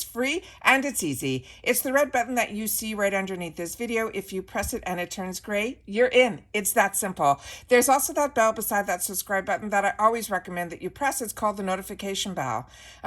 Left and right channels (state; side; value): identical; both; correlation 1.00